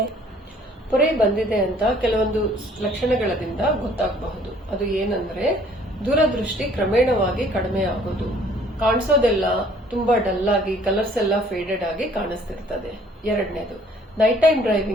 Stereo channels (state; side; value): normal; both; correlation 0.58